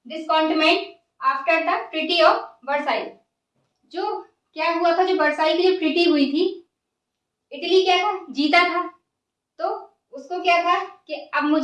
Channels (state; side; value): identical; both; correlation 1.00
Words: discontentment after the treaty of Versailles. जो क्या हुआ था, जो वर्साई की जो ट्रीटी हुई थी, इटली क्या था, जीता था, तो उसको क्या था कि अब